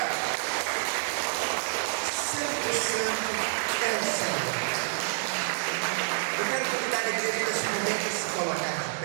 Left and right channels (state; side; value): silent; left; digital silence